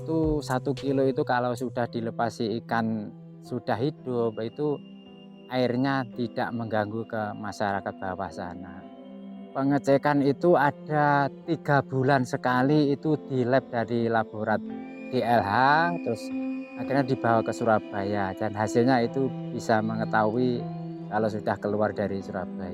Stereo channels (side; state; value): both; identical; correlation 1.00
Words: 1 kilo itu kalau sudah dilepasi ikan sudah hidup, itu airnya tidak mengganggu ke masyarakat bawah sana. Pengecekan itu ada 3 bulan sekali, itu di lab dari laborat DLH, terus akhirnya dibawa ke Surabaya dan hasilnya itu bisa mengetahui kalau sudah keluar dari